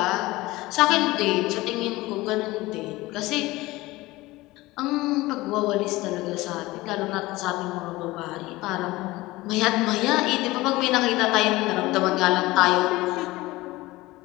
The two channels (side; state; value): right; quieter; 19.6 dB